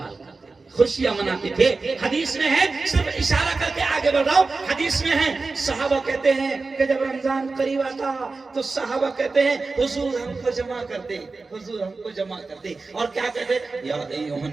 کرتے ہیں. خوشیاں مناتے تھے. حدیث میں ہے, صرف اشارہ کر کے آگے بڑھ رہا ہوں, حدیث میں ہے صحابہ کہتے ہیں کہ جب رمضان قریب آتا تو صحابہ کہتے ہیں حضور ہم کو جمع کر دے, حضور ہم کو جمع کر دے. اور کیا کہتے ہیں, یا ایھا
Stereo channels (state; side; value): quieter; left; 3.9 dB